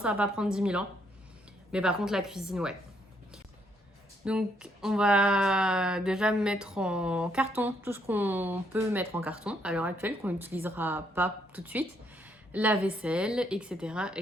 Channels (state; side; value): normal; both; correlation 0.72